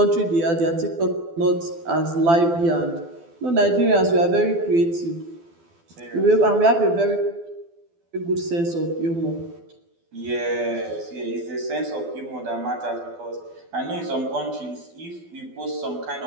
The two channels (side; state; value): left; late; 12 ms